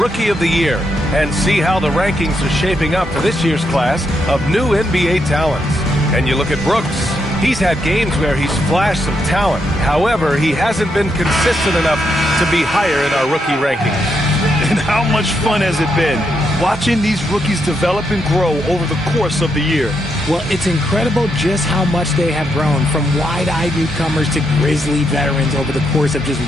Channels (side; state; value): both; normal; correlation 0.80